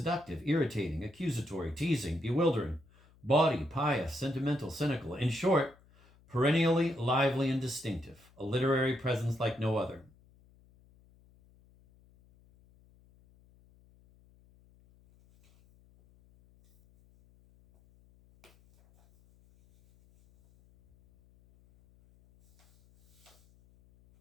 irritating, accusatory, teasing, bewildering, bawdy, pious, sentimental, cynical. In short, perennially lively and distinctive, a literary presence like no other.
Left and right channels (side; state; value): left; noise; hum, 29 dB below the sound